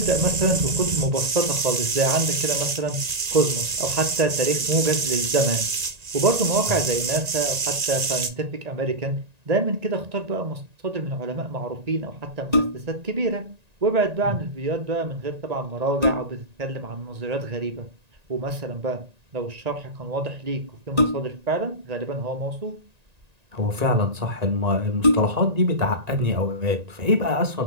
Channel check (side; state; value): left; late; 1.9 ms